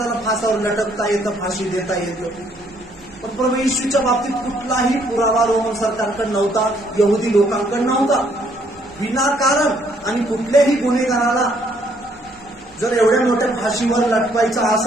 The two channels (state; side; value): noise; left; rumble, 27 dB below the sound